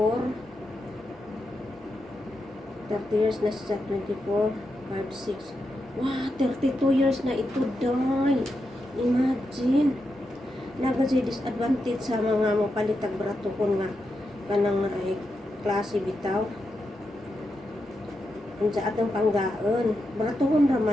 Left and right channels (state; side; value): normal; both; correlation 0.86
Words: 30 years na siya, 24, 5, 6, wow, 32 years na ito, day. Imagine, nagasi disadvantage sa mga mapalitag brato ko nga, kanang ay klase bitaw. Ang sa atong panggaon, brato ko